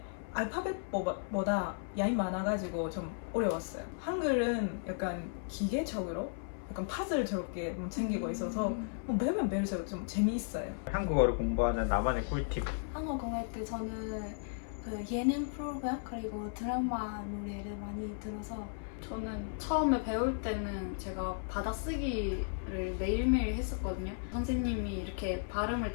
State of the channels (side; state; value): right; silent; 54 dB below the other